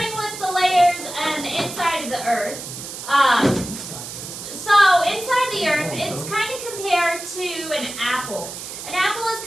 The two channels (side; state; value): right; noise; hiss, 10 dB below the sound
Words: with the layers and the inside of the earth. So inside the earth, it's kind of compared to an apple. An apple is